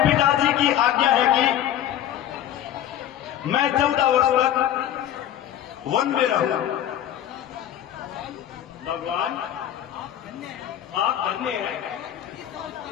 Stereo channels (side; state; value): right; quieter; 11.3 dB